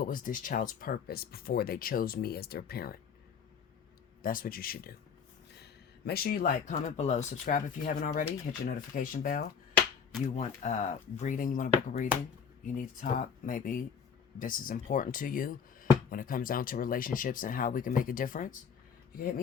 was this child's purpose before they chose me as their parent? That's what you should do. Make sure you like, comment below, subscribe if you haven't already, hit your notification bell. You want reading, you want to book a reading, you need to talk, maybe this is important to you when it comes down to relationships and how we can make a difference. You can hit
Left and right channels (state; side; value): quieter; right; 6.7 dB